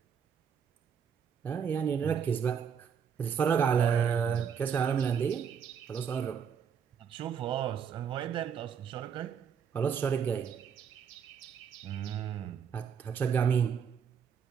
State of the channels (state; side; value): quieter; left; 7.3 dB